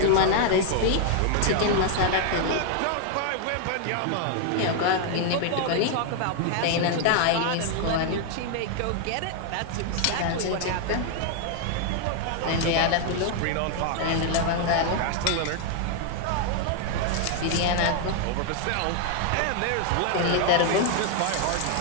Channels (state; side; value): different; both; correlation 0.00